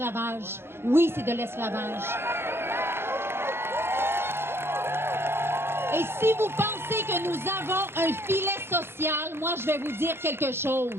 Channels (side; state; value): left; late; 0.11 ms